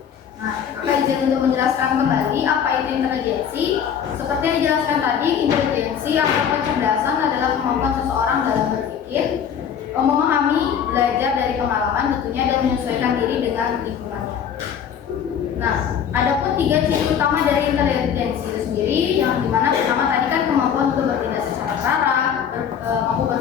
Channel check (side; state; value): right; quieter; 8.1 dB